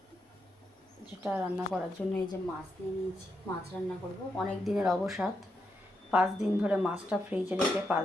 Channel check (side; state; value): both; normal; correlation 0.83